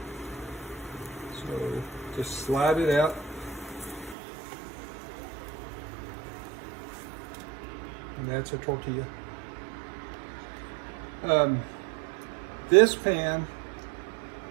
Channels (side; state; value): left; drops out; at 4.2 s